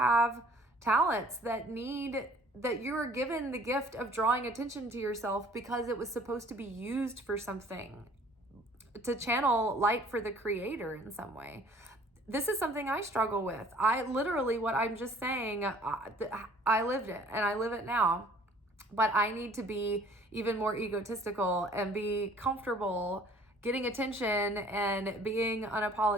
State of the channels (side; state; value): both; normal; correlation 0.54